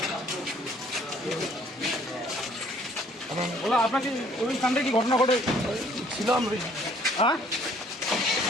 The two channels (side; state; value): both; normal; correlation 0.60